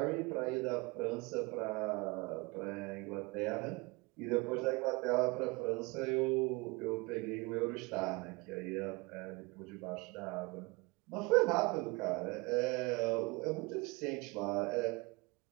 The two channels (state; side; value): quieter; left; 26.1 dB